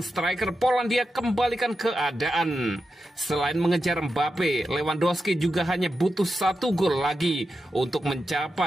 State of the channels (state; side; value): normal; both; correlation 0.89